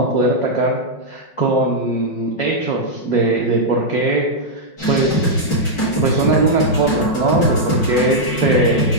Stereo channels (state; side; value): late; right; 5.5 ms